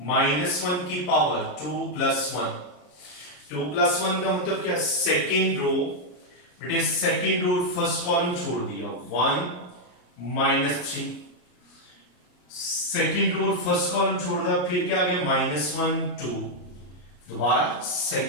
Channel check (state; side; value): late; right; 33 ms